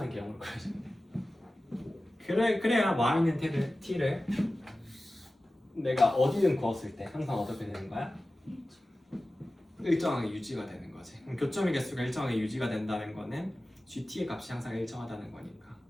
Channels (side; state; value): both; normal; correlation 0.96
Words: 개형으로 그려주면 돼. 그래야 y는 t를 내가 어디든 그었을 때 항상 어떻게 되는 거야? 일정하게 유지가 되는 거지. 그럼 교점의 개수가 일정하게 유지가 된다는 거는 gt의 값이 항상 일정하다는 거니까